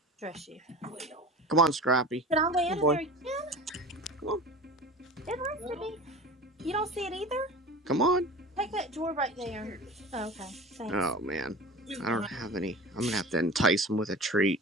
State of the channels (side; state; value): both; normal; correlation 0.35